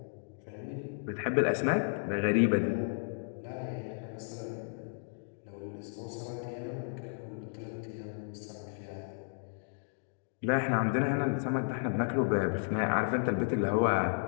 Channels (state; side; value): silent; right; digital silence